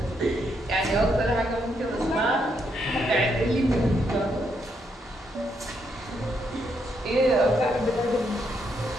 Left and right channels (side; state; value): both; normal; correlation 0.77